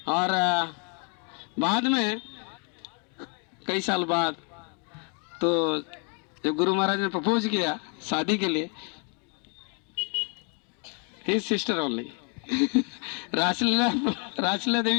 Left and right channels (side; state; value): right; quieter; 38.1 dB